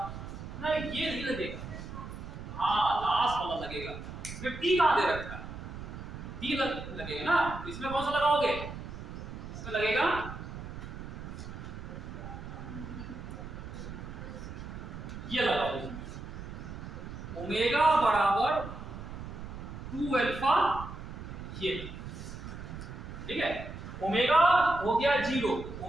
ना, ये नहीं लगेगा, हाँ लास्ट वाला लगेगा। इसमें टी कहां दे रखा है, टी लगेगा ना, तो इसमें कौन सा लगाओगे, इसमें लगेगा ये लगाओ, ओमेगा बराबर 2 अल्फा, ये ठीक है। ओमेगा हो गया 0,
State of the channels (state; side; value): noise; right; rumble, 10 dB below the sound